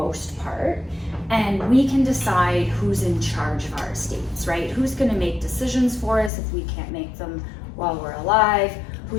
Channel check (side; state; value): right; drops out; at 6.3 s